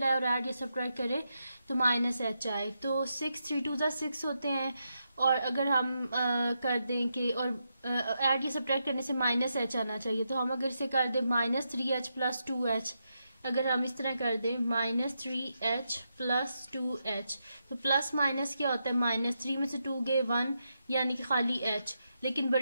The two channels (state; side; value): inverted; both; correlation -0.84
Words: है और ऐड या सब्ट्रैक्ट करें तो माइनस एच आए। तो 6 3 2 6 होते हैं और अगर हम कर दें कि और ऐड या सब्ट्रैक्ट करने से माइनस एच आना चाहिए, तो हम अगर इसे कर दें माइनस 3h प्लस 2h, अगर हम इस तरह कर दें माइनस 3h प्लस 2h, तो प्लस माइनस क्या होता है, माइनस 3 में से 2 गए 1 यानी कि खाली h, लेकिन